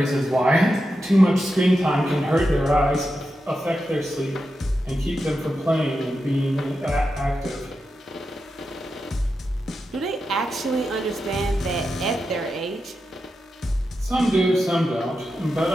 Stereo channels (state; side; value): normal; both; correlation 0.89